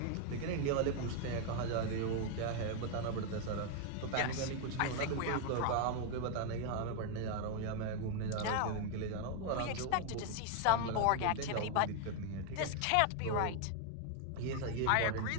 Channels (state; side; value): different; both; correlation 0.00